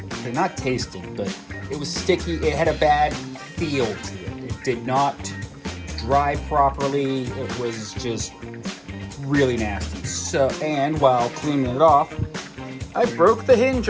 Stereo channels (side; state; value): both; identical; correlation 1.00